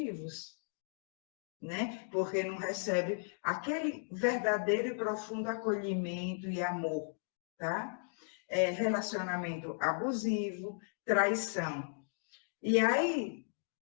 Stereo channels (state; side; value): silent; right; digital silence